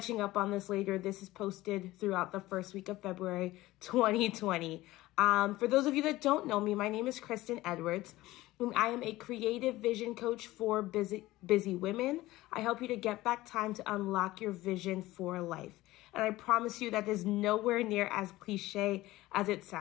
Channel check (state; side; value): quieter; right; 17.6 dB